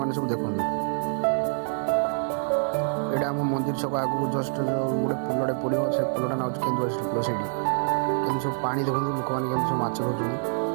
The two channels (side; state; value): left; silent; 61 dB below the other